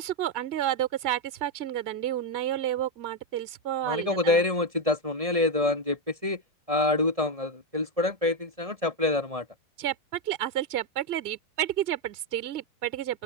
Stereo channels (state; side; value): late; left; 1.7 ms